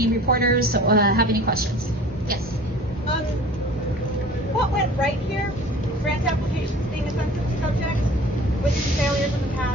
reporters have any questions. Yes. What went right here? Grant applications being a sensitive subject with some failures in the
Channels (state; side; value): normal; both; correlation 0.45